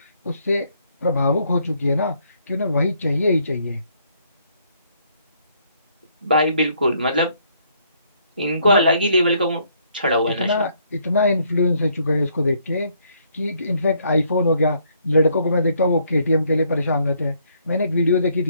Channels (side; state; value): both; inverted; correlation -0.69